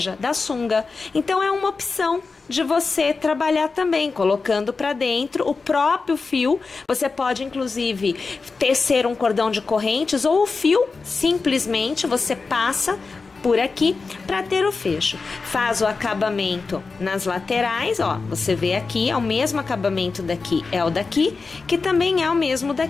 da sunga. Então é uma opção de você trabalhar também, colocando para dentro o próprio fio. Você pode inclusive tecer um cordão de correntes ou o fio, simplesmente você passa por aqui para ter o fecho. Faz o acabamento nas laterais, ó, você vê aqui, é o mesmo acabamento daqui, é o daqui, que também é o mesmo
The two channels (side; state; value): right; quieter; 4.3 dB